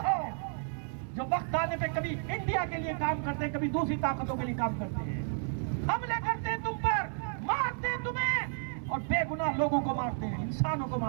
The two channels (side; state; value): left; silent; 56 dB below the other